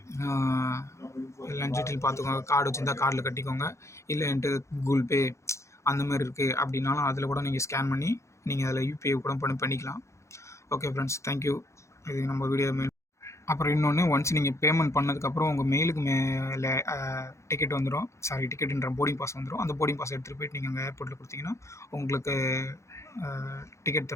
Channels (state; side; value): late; right; 0.14 ms